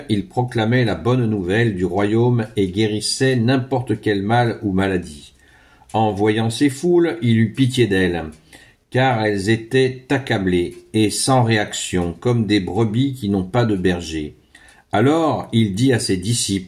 il proclamait la bonne nouvelle du royaume et guérissait n'importe quel mal ou maladie. En voyant ces foules, il eut pitié d'elles, car elles étaient accablées et sans réaction, comme des brebis qui n'ont pas de berger. Alors il dit à ses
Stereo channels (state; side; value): identical; both; correlation 1.00